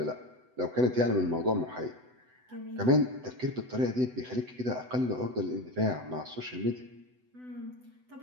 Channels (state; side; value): late; left; 7.9 ms